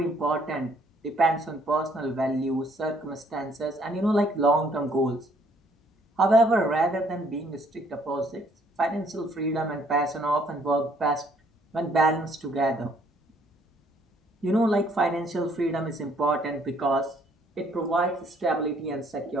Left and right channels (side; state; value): both; normal; correlation 0.64